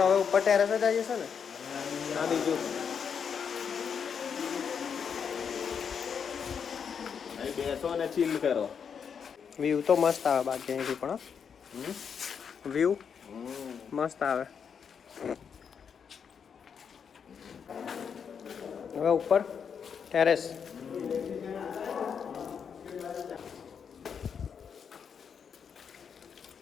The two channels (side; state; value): right; quieter; 6.9 dB